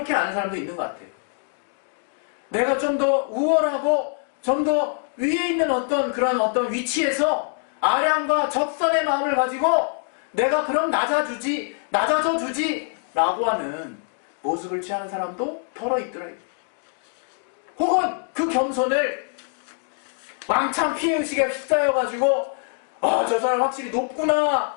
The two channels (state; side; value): silent; right; 60 dB below the other